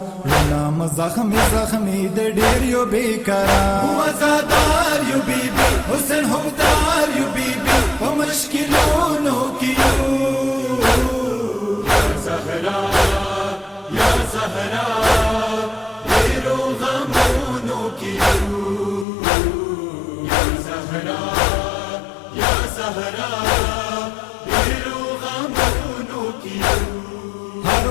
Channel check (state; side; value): drops out; right; at 19.1 s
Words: नाम जख्मी जख्मी दे डिरियो बेकरार मुआज़ादार यू बीबी हुस्न हमदार यू बीबी वो मुश्किलों की या ज़हरा या ज़हरा तेरो गमों की या ज़हरा या ज़हरा तेरो गमों की हर